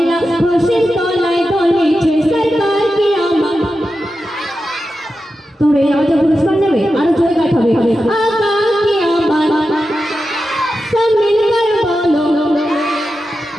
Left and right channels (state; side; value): normal; both; correlation 0.91